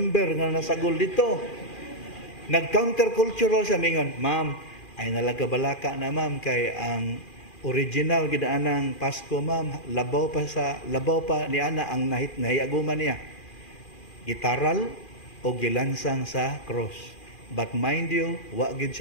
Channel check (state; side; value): late; right; 2.4 ms